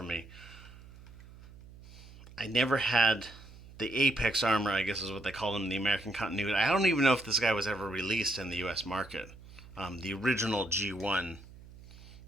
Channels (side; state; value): right; noise; hum, 19 dB below the sound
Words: me. I never had the Apex Armour, I guess is what they call him in the American continuity. I don't even know if this guy was ever released in the U.S. market. The original G1